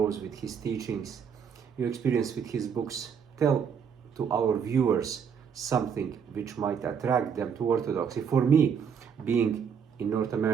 with his teachings, your experience with his books, tell to our viewers something which might attract them to Orthodoxy. For me, being in North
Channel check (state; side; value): quieter; left; 7.1 dB